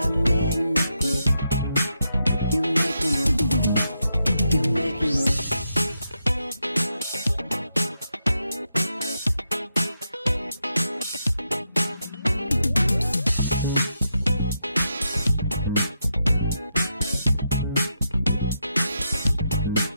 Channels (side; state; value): both; inverted; correlation -0.83